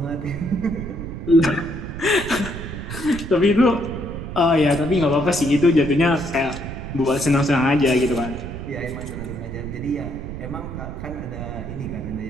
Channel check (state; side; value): noise; right; rumble, 8 dB below the sound